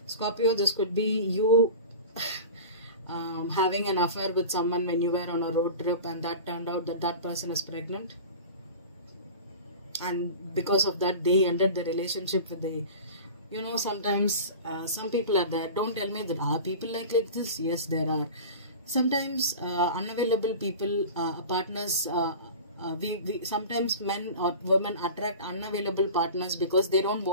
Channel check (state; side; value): inverted; both; correlation -0.35